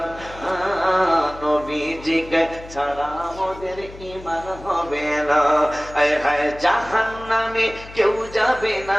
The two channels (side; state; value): left; noise; hum, 17 dB below the sound